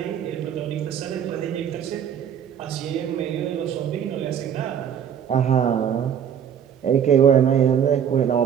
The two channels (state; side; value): quieter; left; 8.5 dB